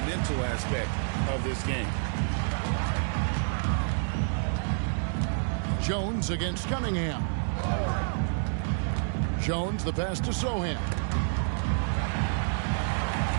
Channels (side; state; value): left; silent; digital silence